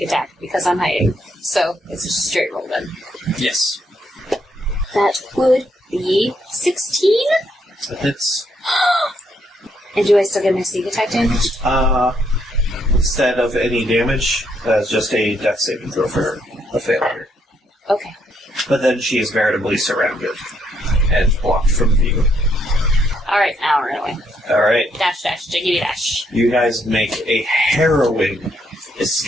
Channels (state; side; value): normal; both; correlation 0.74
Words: attack, because I'm hiding. So, it's just a straight roll then. Yes. That would be 16? It's, And do I still get my sneak attack damage? instead of any damage, that's just a death saving throw for her. A failure. Okay. But then she is veritably surrounded and blocked from view. Alright, now run away. Alright. Dash, jiggity dash. You guys make a harrowing